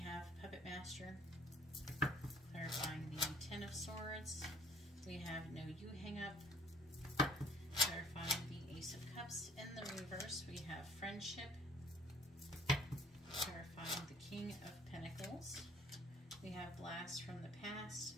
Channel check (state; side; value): normal; both; correlation 0.54